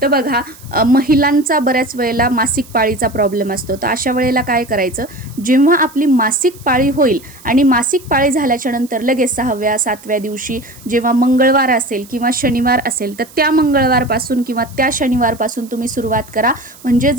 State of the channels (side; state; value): right; noise; hiss, 22 dB below the sound